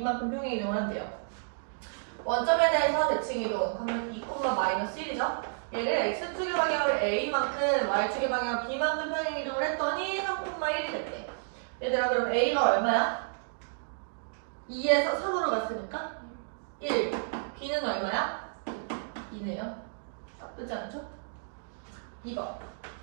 평행 이동을 한대요. 원점에 대해서 대칭 이동 그러면 2,-1이죠. 얘를 x축의 방향으로 a만큼 y축의 방향으로 b만큼 평행 이동을 했더니 3,1이 됐대. 얘들아 그럼 a가 얼마야? 2에서 3으로 갔으니까 1. b는 얼마야? 2네요. 그렇지 않죠? 2번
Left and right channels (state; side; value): silent; left; digital silence